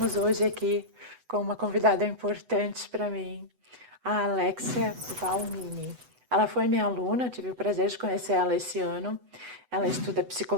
hoje aqui com uma convidada importante para mim, a Alexia Valmini. Ela foi minha aluna, tive o prazer de conhecer ela esse ano. Ela estuda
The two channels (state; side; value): late; left; 8.0 ms